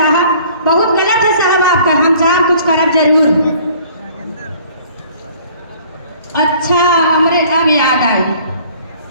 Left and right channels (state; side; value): inverted; both; correlation -0.54